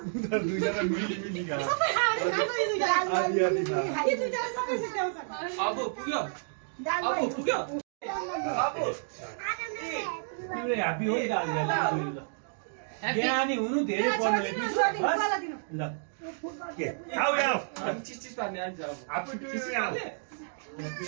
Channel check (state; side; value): silent; left; digital silence